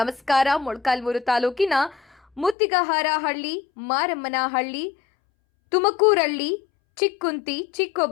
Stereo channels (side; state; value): right; drops out; at 2.6 s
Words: ಮೊಳಕಾಲ್ಮೂರು ತಾಲೂಕಿನ ಮುತ್ತಿಗಹಾರಹಳ್ಳಿ, ಮಾರಮ್ಮನಹಳ್ಳಿ, ತುಮಕೂರಹಳ್ಳಿ, ಚಿಕ್ಕುಂತಿ,